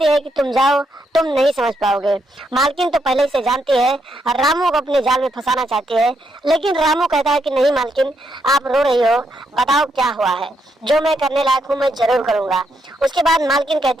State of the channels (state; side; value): normal; both; correlation 0.78